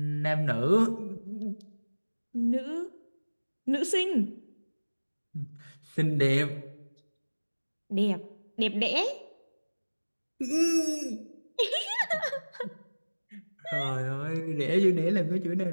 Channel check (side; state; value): both; inverted; correlation -1.00